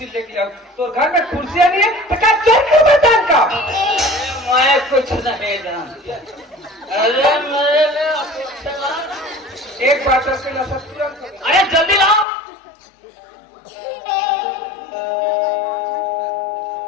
लेके आओ तो घर में कुर्सियां नहीं है तो क्या चोर क्यों बतान का मैं कुछ नहीं जानती। अरे मेरे लिए अपेक्षा एक बात है उसके नशा तुरंत हो गया। अरे जल्दी लाओ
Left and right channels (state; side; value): drops out; right; at 12.2 s